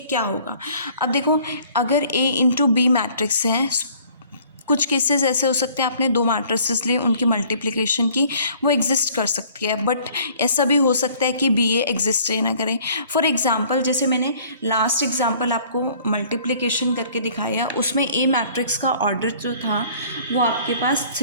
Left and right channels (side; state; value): both; inverted; correlation -0.55